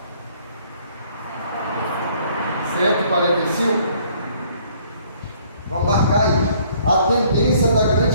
145? Vamos marcar aí. A tendência da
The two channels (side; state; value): both; inverted; correlation -0.60